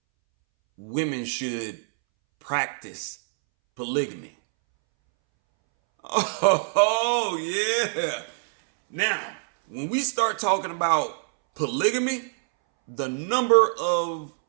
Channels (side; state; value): left; silent; 62 dB below the other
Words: Women should practice polygamy. Oh, yeah. Now, when we start talking about polygamy, the number of